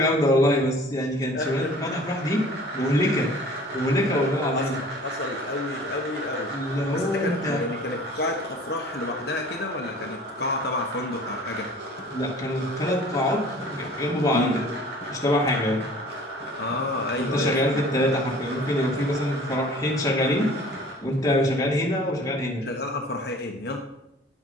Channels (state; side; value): normal; both; correlation 0.47